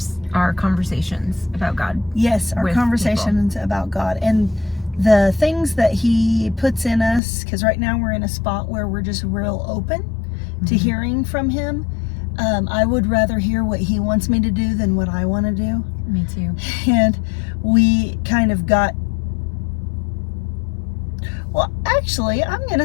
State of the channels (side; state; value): right; drops out; at 7.2 s